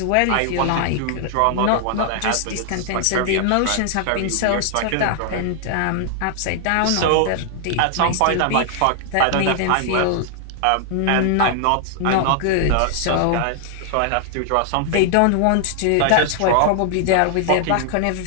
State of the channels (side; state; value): both; different; correlation 0.00